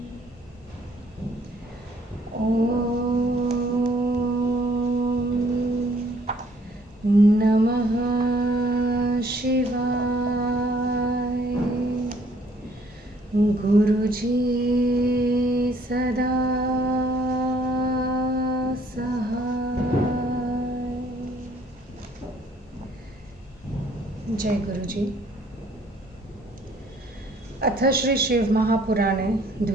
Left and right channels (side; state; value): both; normal; correlation 0.62